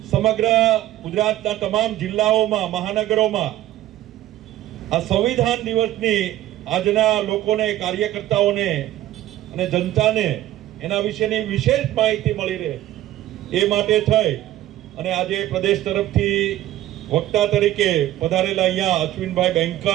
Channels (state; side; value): quieter; left; 13.9 dB